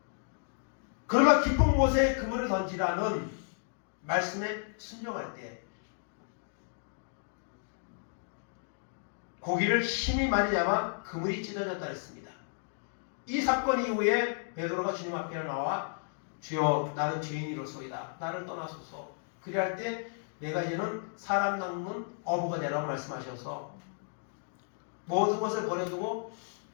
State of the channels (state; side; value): silent; right; digital silence